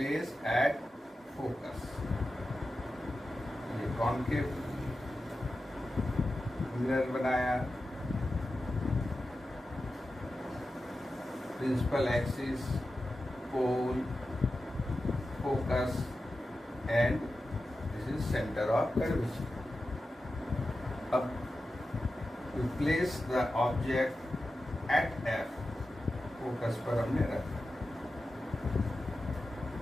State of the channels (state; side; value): normal; both; correlation 0.92